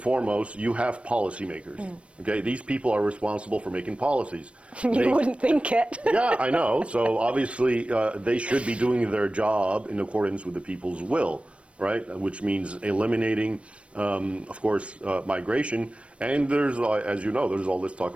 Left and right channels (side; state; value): left; late; 0.061 ms